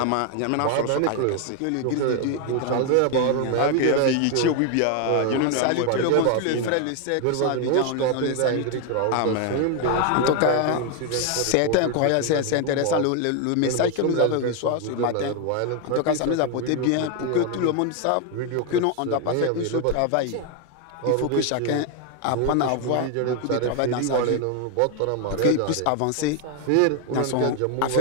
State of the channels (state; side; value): different; both; correlation 0.01